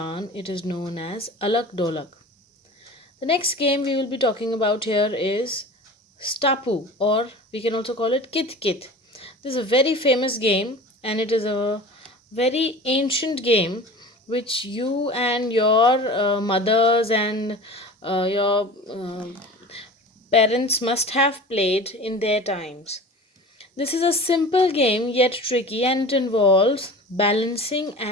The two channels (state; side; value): normal; both; correlation 0.37